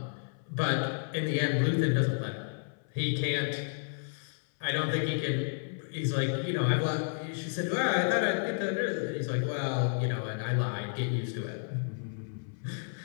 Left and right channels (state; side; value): silent; right; 57 dB below the other